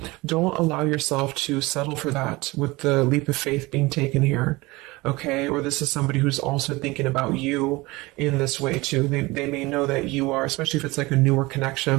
don't allow yourself to settle for that with the leap of faith being taken here. Okay. Or this is somebody who's also thinking about you in this way too. They may know that you are, especially if it's like a newer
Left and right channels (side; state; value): left; quieter; 22.0 dB